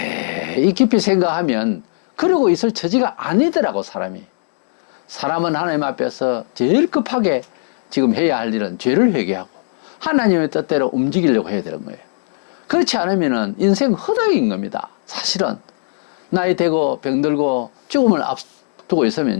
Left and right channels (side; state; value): right; silent; digital silence